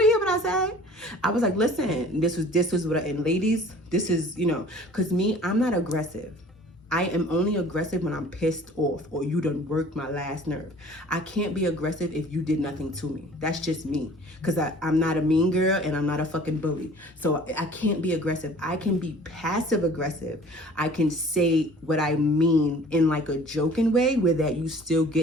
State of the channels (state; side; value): normal; both; correlation 0.49